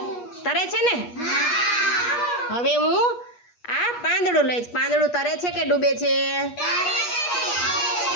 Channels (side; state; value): right; late; 8.4 ms